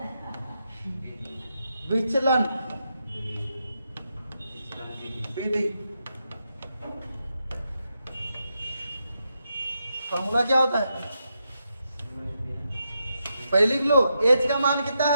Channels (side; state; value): both; inverted; correlation -0.84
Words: विचलन विधि। फॉर्मूला क्या होता है, पहले लिख लो, एच का मान कितना